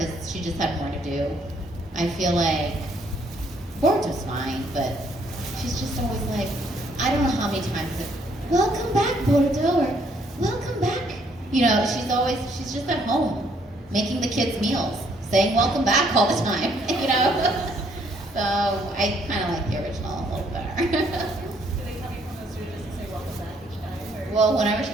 she just had more to do. I feel like Boruto's fine, but she's just always like, I don't know how many times it's, welcome back, Boruto, or welcome back. She's just at home making the kids meals, saying welcome back all the time, So I kind of like the original a little better. Do they come in from the studio just to say welcome back each time? Or? Well, whenever she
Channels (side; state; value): both; normal; correlation 0.67